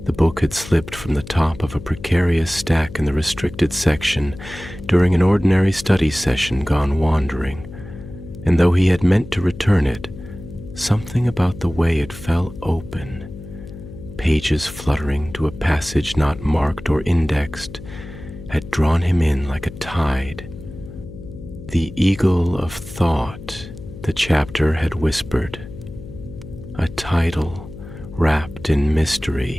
The book had slipped from the top of a precarious stack in the restricted section during an ordinary study session gone wandering, and though he had meant to return it, something about the way it fell open, pages fluttering to a passage not marked or indexed, had drawn him in like a tide. The Eagle of Thought, the chapter had whispered, a title wrapped in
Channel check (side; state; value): left; noise; hum, 14 dB below the sound